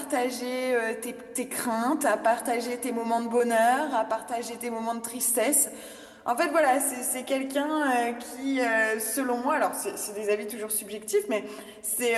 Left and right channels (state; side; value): identical; both; correlation 1.00